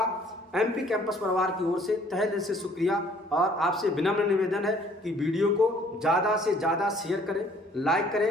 एमपी कैंपस परिवार की ओर से तहे दिल से शुक्रिया। और आपसे विनम्र निवेदन है कि वीडियो को ज़्यादा से ज़्यादा शेयर करें, लाइक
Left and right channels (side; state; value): both; normal; correlation 0.58